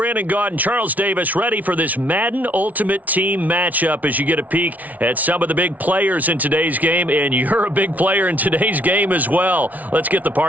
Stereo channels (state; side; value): late; left; 0.074 ms